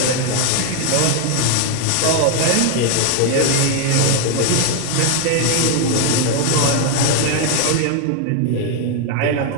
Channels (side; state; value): both; different; correlation 0.00